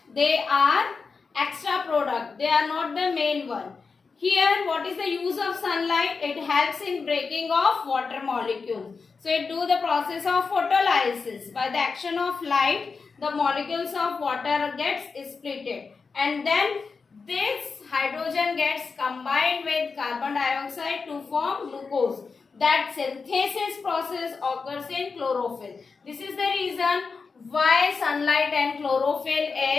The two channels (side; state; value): right; quieter; 4.8 dB